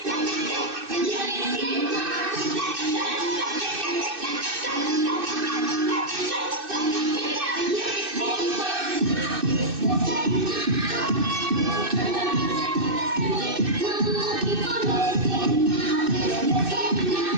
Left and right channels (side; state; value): left; late; 2.6 ms